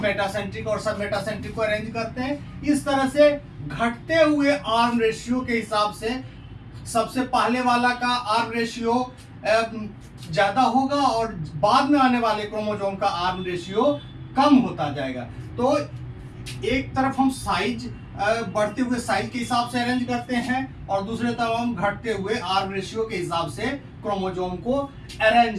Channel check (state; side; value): identical; both; correlation 1.00